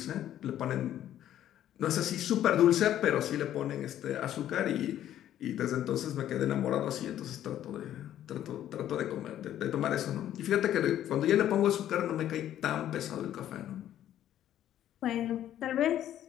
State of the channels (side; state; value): right; quieter; 11.7 dB